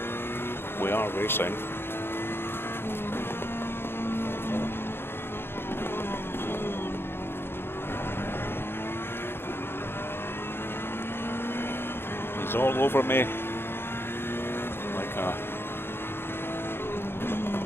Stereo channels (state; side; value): late; right; 0.11 ms